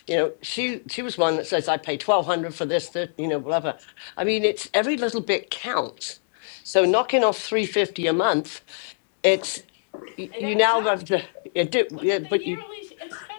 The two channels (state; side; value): silent; right; digital silence